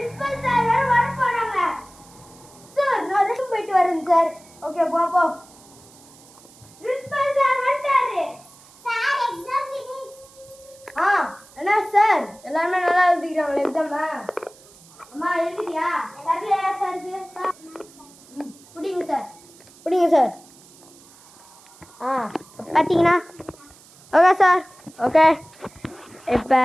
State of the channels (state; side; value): noise; right; hiss, 24 dB below the sound